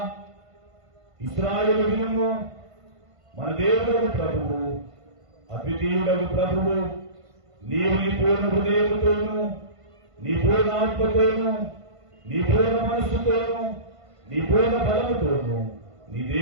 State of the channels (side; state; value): left; late; 1.5 ms